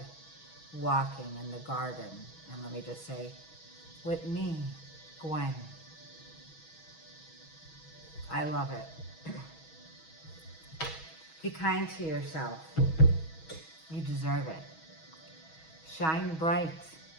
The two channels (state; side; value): late; right; 6.2 ms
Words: walking in the garden. And let me just say, with me, Gwen. I love it. Be kind to yourself. You deserve it. Shine bright.